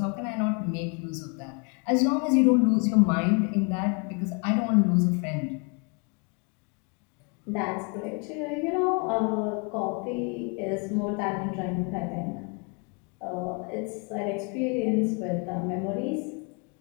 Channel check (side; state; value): right; quieter; 34.7 dB